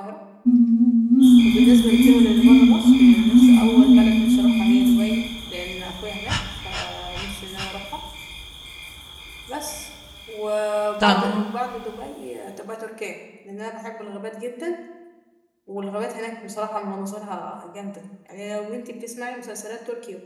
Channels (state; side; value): identical; both; correlation 1.00